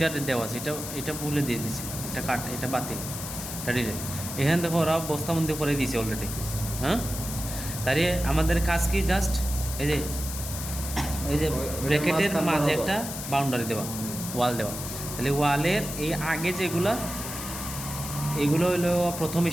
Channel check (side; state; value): left; noise; hiss, 7 dB below the sound